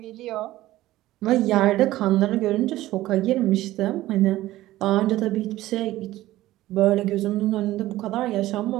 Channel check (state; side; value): quieter; left; 15.9 dB